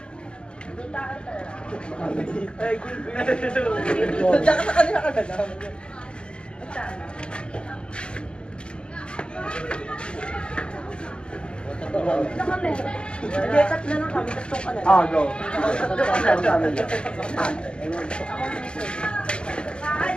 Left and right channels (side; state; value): right; late; 0.049 ms